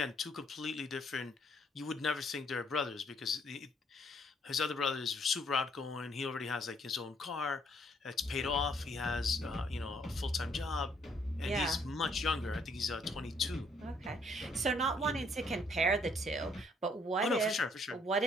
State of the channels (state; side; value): normal; both; correlation 0.67